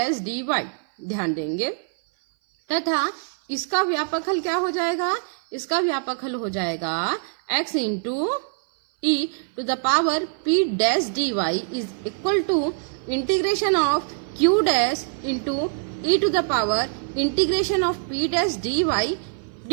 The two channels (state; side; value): silent; left; 58 dB below the other